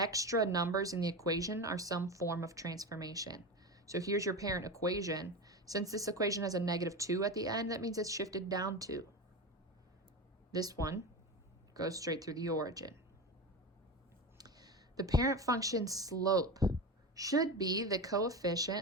numbers in the equation are some form of transformation. So here's your parent equation. Since this equation has a -2 at the end, that means it's shifted down 2. This one goes straight through the origin. The parent function slope should be the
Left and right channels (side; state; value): both; normal; correlation 0.23